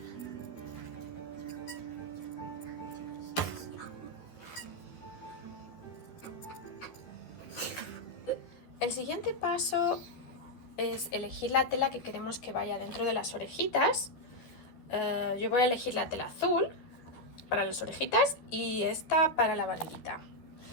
El siguiente paso es elegir la tela que queremos que vaya dentro de las orejitas. Yo voy a elegir la tela azul para las orejitas y esta para la barriguita.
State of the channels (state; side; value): late; right; 12 ms